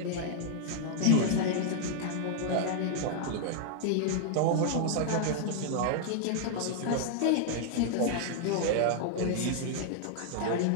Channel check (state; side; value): different; both; correlation -0.01